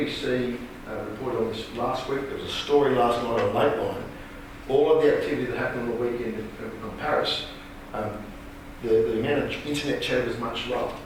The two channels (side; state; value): both; identical; correlation 1.00